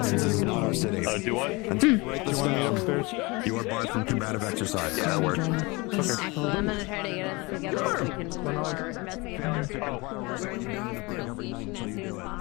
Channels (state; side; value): quieter; right; 25.4 dB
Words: do what? You are barred from combative exercise. Yeah, that works. Well, I'm gonna try to get us together so we can investigate